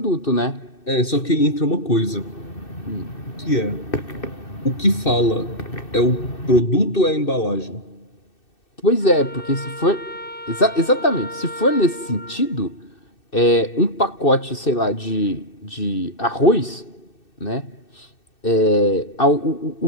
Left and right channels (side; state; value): right; late; 2.6 ms